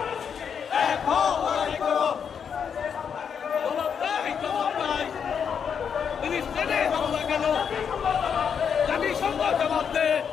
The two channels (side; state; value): right; quieter; 7.2 dB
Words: এক হও, লড়াই করো। জবাব নাই ফিলিস্তিনে হামলা কেন? জাতিসংঘ জবাব দে।